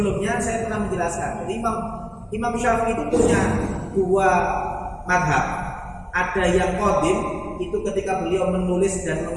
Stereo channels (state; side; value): identical; both; correlation 1.00